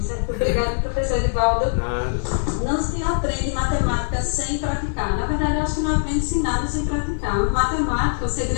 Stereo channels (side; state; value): right; silent; digital silence